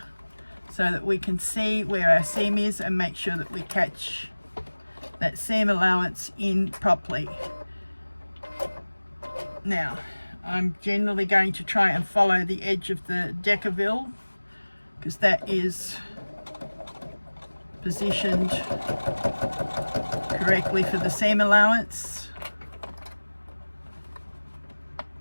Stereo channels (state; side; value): inverted; both; correlation -1.00